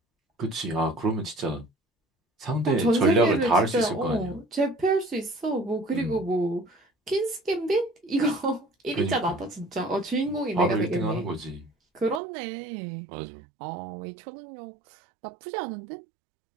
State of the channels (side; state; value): left; drops out; at 12.2 s